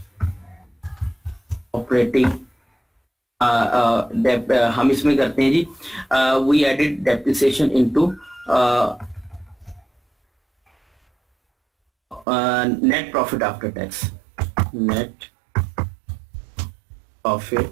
ऑपरेटिंग हम इसमें करते हैं जी, we added depreciation into net profit after tax, net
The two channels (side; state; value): left; drops out; at 12.2 s